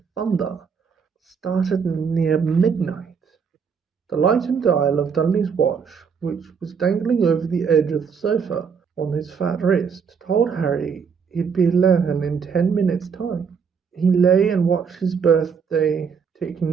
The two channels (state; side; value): quieter; left; 6.3 dB